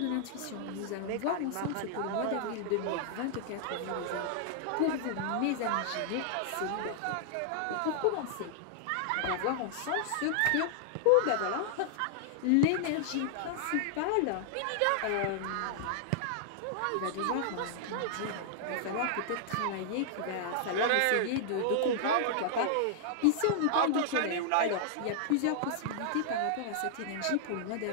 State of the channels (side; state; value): both; different; correlation -0.01